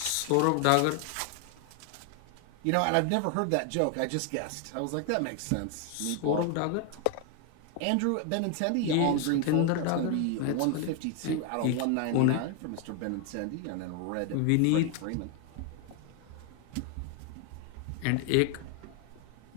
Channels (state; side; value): different; both; correlation 0.01